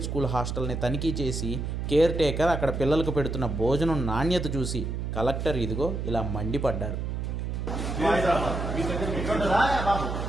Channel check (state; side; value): noise; right; hum, 3 dB below the sound